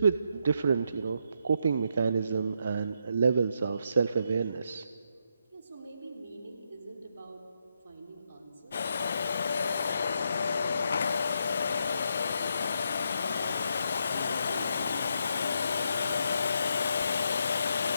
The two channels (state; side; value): inverted; both; correlation -0.79